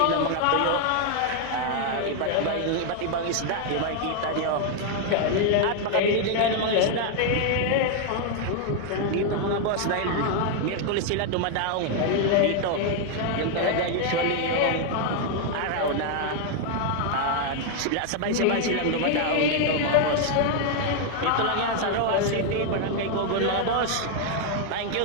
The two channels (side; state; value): both; different; correlation 0.00